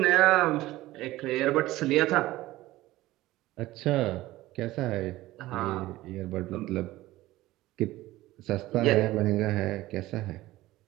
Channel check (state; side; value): quieter; left; 17.1 dB